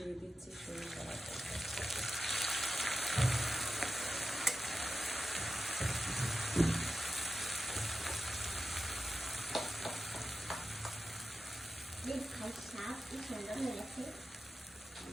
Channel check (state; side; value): normal; both; correlation 0.92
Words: দিচ্ছি সরিষা বাটা।